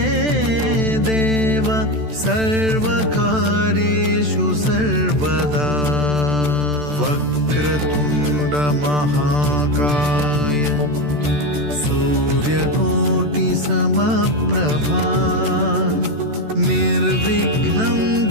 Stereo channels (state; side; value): late; left; 14 ms